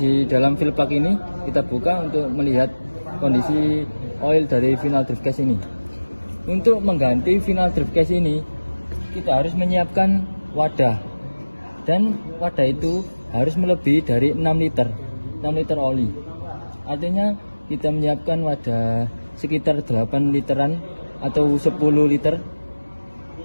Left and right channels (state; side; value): inverted; both; correlation -1.00